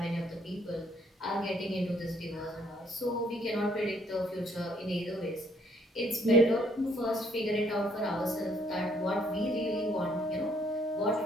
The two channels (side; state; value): both; normal; correlation 0.66